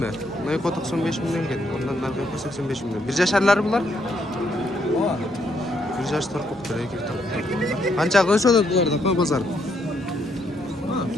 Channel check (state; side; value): normal; both; correlation 0.74